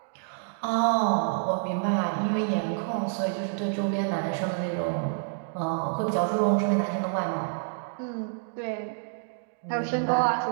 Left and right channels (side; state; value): left; silent; digital silence